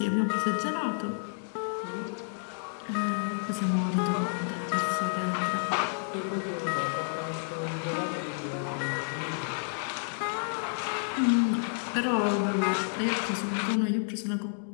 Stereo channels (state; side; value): silent; right; digital silence